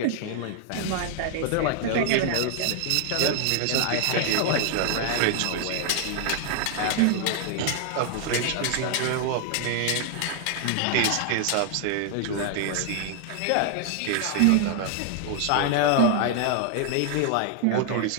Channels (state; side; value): different; both; correlation 0.00